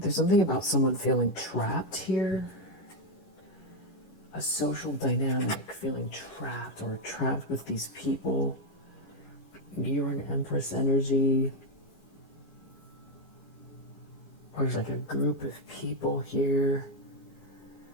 something about someone feeling trapped here. A social dynamic, feeling trapped or trapped with these people. You're an Empress energy. Or there's like a group of people here.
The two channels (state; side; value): late; right; 11 ms